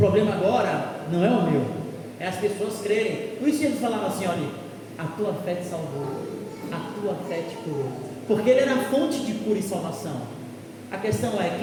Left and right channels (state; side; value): identical; both; correlation 1.00